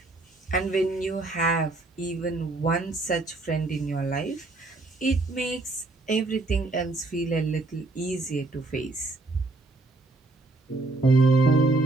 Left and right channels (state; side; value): quieter; left; 3.1 dB